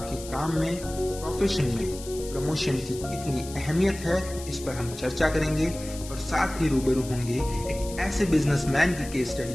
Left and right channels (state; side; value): noise; left; hiss, 14 dB below the sound